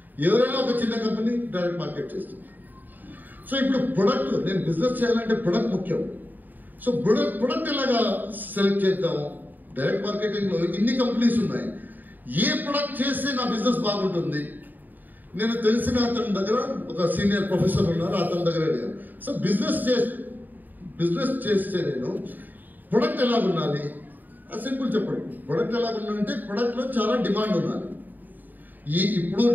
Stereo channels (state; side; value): late; left; 0.087 ms